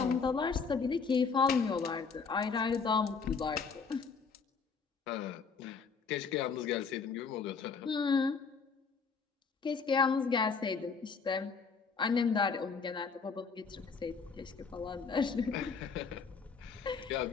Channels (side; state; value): right; quieter; 5.4 dB